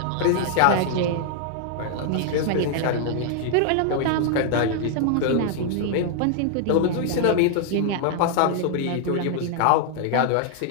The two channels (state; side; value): different; both; correlation 0.00